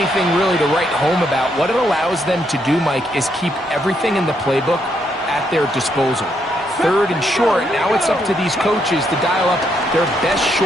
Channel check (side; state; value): both; normal; correlation 0.76